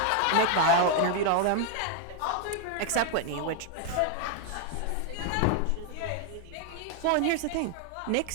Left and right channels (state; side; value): different; both; correlation 0.00